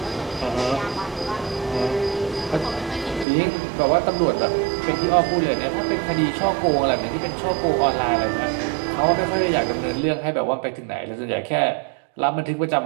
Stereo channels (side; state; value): left; drops out; at 3.2 s